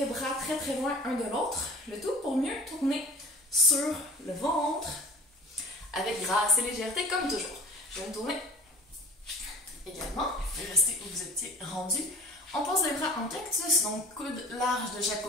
bras très très loin un de l'autre. Le tout pour mieux tourner sur le ventre avec grâce et légèreté comme toujours. Je vais me tourner également et rester où vous étiez rendu. On pose les bras en cactus, donc coudes larges de chaque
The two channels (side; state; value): both; normal; correlation 0.43